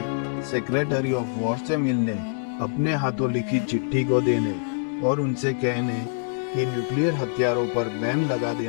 सेक्रेटरी ऑफ वॉर से मिलने, अपने हाथों लिखी चिट्ठी को देने और उनसे कहने कि न्यूक्लियर हथियारों पर बैन लगा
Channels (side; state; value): right; silent; digital silence